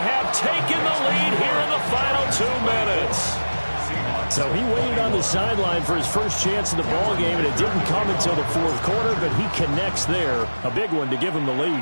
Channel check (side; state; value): both; inverted; correlation -1.00